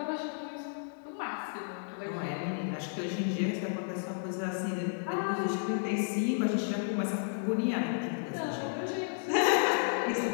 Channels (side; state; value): right; silent; digital silence